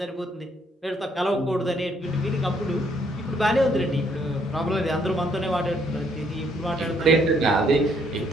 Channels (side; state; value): both; normal; correlation 0.69